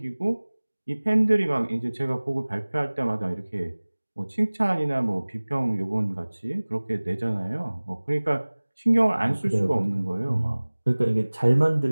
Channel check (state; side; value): inverted; both; correlation -1.00